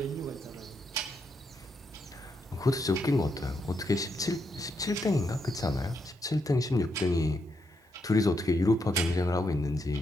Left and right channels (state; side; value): normal; both; correlation 0.80